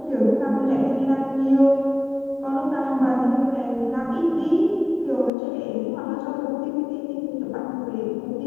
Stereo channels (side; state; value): right; drops out; at 5.3 s